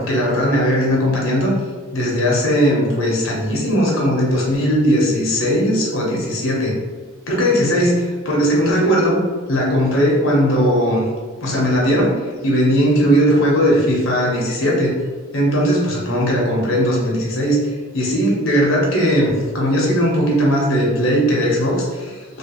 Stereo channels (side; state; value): both; normal; correlation 0.47